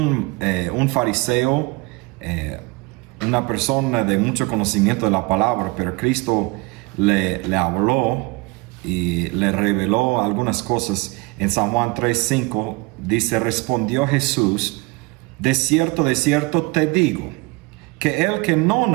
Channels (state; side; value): quieter; left; 25.2 dB